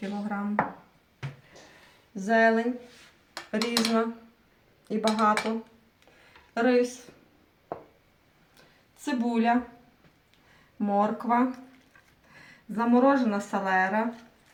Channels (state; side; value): identical; both; correlation 1.00